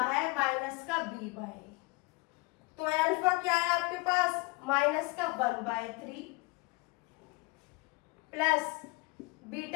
माइनस का b/a। तो अल्फा क्या है आपके पास माइनस का 1/3 प्लस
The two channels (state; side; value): quieter; right; 25.7 dB